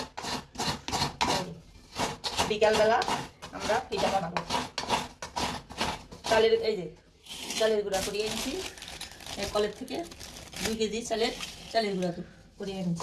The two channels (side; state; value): both; identical; correlation 1.00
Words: বিকালবেলা আমরা পিঠা বানাবো। চালের চালের গুঁড়া করিয়ে এনেছি কলের থেকে 2 কেজি চালের গুঁড়া করিয়ে